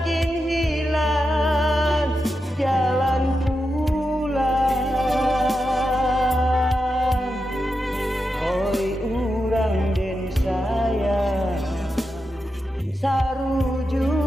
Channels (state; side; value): normal; both; correlation 0.88